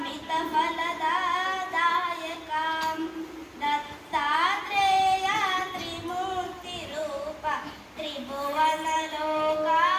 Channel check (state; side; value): identical; both; correlation 1.00